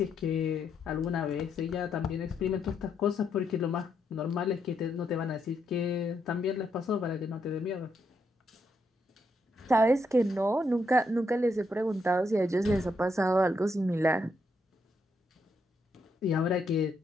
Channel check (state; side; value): normal; both; correlation 0.78